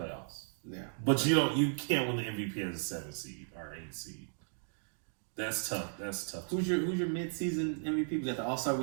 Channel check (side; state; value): left; silent; digital silence